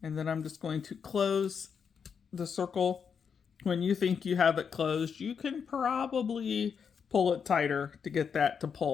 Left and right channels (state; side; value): quieter; right; 6.7 dB